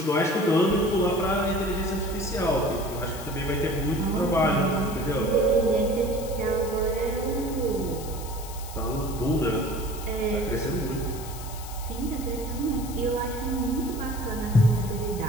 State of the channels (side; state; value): left; noise; hiss, 14 dB below the sound